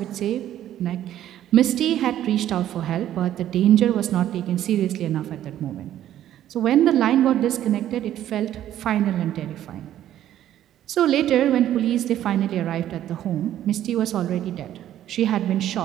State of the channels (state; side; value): quieter; left; 11.9 dB